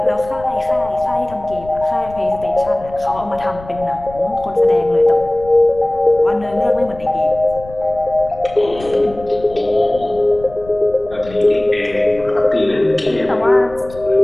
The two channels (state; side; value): noise; left; rumble, 18 dB below the sound